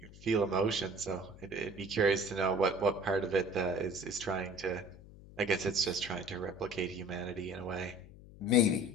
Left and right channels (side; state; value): left; noise; hum, 19 dB below the sound